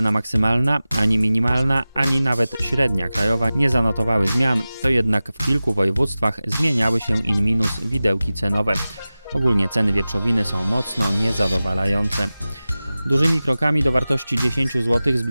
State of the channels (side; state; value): both; inverted; correlation -0.96